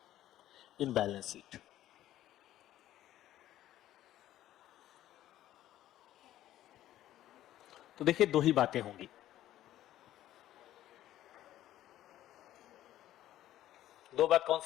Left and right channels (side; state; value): right; quieter; 13.3 dB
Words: in balance sheet, तो देखिए दो ही बातें होंगी। दो बात कौन